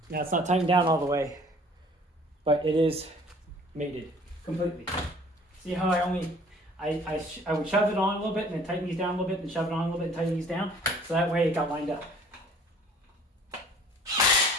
Now it's not tightened down all the way, but it is mated completely. See how I would shove it on a little bit and then tighten these down a little bit and shove it on a little bit and tighten these down, so that way it got lined up.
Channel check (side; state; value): both; normal; correlation 0.52